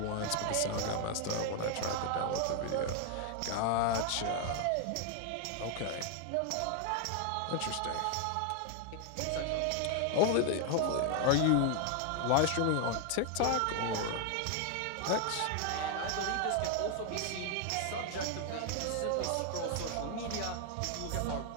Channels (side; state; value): both; different; correlation 0.00